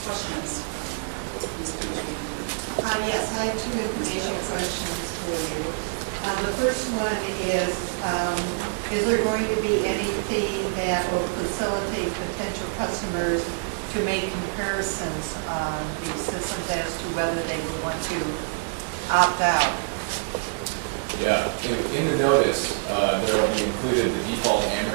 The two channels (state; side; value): silent; left; digital silence